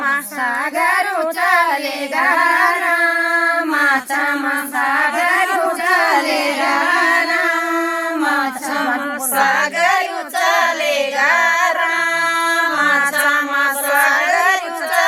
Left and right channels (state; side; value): identical; both; correlation 1.00